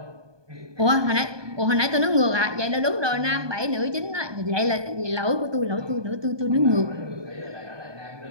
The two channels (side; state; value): left; late; 1.2 ms